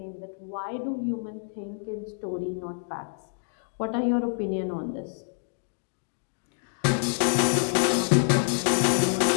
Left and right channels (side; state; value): right; silent; digital silence